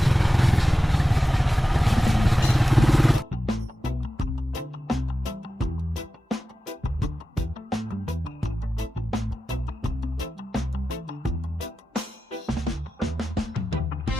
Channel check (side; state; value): both; normal; correlation 0.93